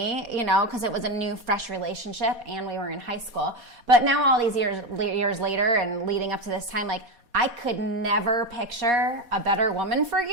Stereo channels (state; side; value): late; left; 4.2 ms